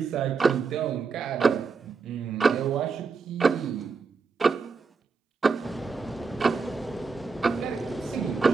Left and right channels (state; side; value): quieter; left; 4.9 dB